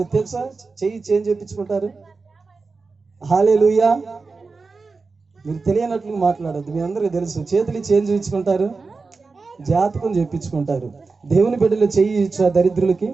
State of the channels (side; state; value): left; quieter; 4.2 dB